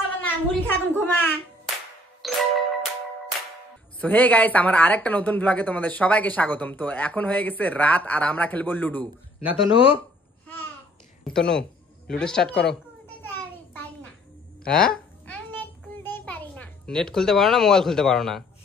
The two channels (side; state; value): both; normal; correlation 0.59